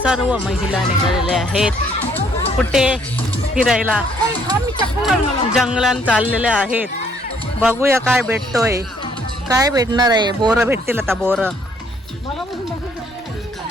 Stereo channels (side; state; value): both; normal; correlation 0.65